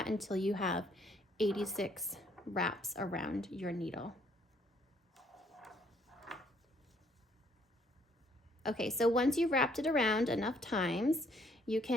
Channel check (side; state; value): both; normal; correlation 0.66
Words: until you have 86 wraps around your needle. Okay, so once you've wrapped it around enough times, you